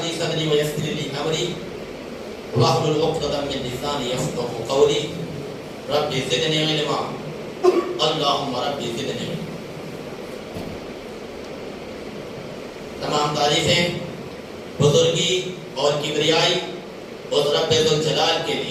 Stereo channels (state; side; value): identical; both; correlation 1.00